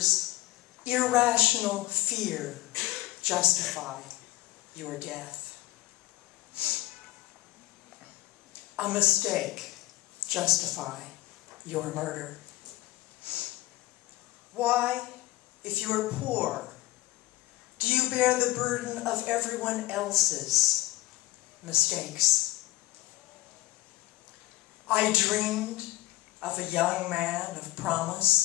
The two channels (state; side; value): quieter; right; 18.1 dB